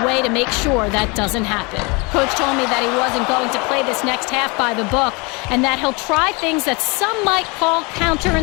way to make sure that doesn't happen. Coach told me that he wasn't going to play this next half by the book and that he'll try things that some might call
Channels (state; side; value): quieter; right; 28.7 dB